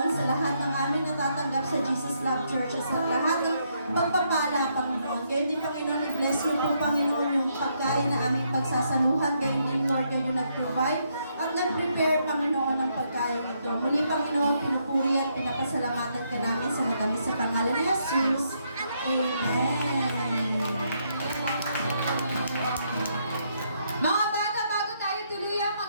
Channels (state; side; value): inverted; both; correlation -0.75